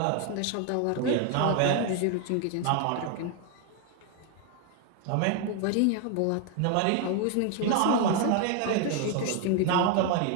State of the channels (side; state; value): both; different; correlation 0.01